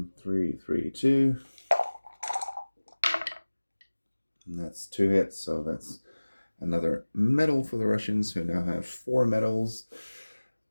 3, 2. And that's 2 hits, so that's another medal for the Russians, who now have 4 medals.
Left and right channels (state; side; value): inverted; both; correlation -1.00